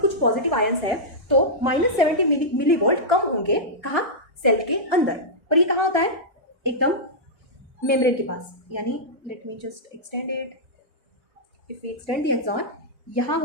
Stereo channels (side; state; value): both; normal; correlation -0.11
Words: पॉजिटिव आयंस है तो -70 मिलीवोल्ट कम होंगे, कहाँ, सेल के अंदर. और ये कहाँ होता है, एकदम मेम्ब्रेन के पास. यानी let me just extend it. If we extend the axon, यहाँ